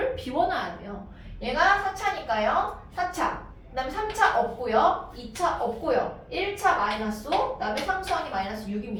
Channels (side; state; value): both; identical; correlation 1.00